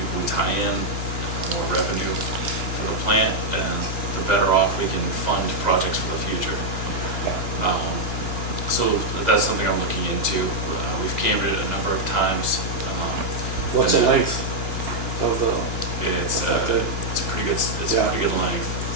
we tie in, the more revenue for the plant, and the better off we can fund projects for the future. So that's something I'm looking into. We've cambered it a number of times. What's the length of the, It's Okay. it's a pretty good, it's Yeah. a pretty good length.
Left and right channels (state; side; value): late; left; 2.9 ms